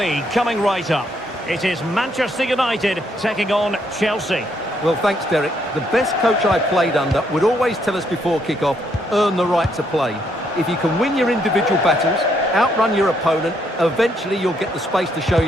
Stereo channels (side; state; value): both; normal; correlation 0.73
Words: coming right up. It is Manchester United taking on Chelsea. Well, thanks, Derek. The best coach I played under would always tell us before kick-off, earn the right to play. If you can win your individual battles, outrun your opponent, eventually you'll get the space to show